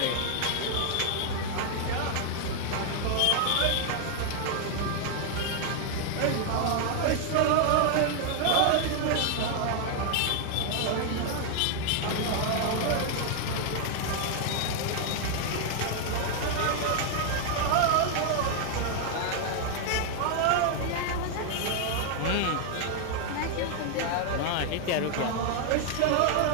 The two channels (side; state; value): both; different; correlation 0.00